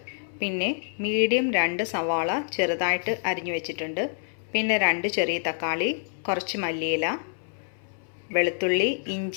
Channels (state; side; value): silent; right; 60 dB below the other